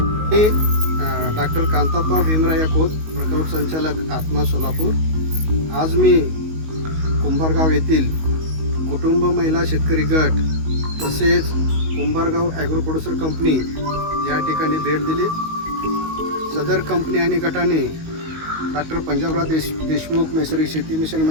मी डॉक्टर कांताप्पा भीमराया खोत, प्रकल्प संचालक आत्मा सोलापूर. आज मी कुंभारगाव येथील कुटुंब महिला शेतकरी गट तसेच कुंभारगाव ॲग्रो प्रोड्युसर कंपनी या ठिकाणी भेट दिली. सदर कंपनी आणि गटाने डॉक्टर पंजाबराव देशमुख नैसर्गिक शेती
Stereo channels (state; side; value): late; left; 19 ms